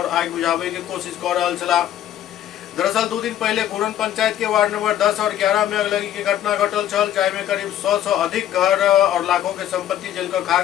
आग बुझावे के कोशिश कर रहल छला। दरअसल 2 दिन पहले घूरन पंचायत के वार्ड नंबर 10 और 11 में अगलगी के घटना घटल छल, जाहिमे करीब 100 से अधिक घर और लाखों के संपत्ति जल कर खाक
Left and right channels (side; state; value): right; quieter; 11.6 dB